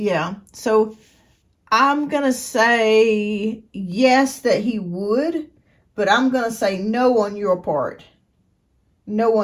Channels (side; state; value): both; identical; correlation 1.00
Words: So I'm going to say yes that he would, but I'm going to say no on your part. No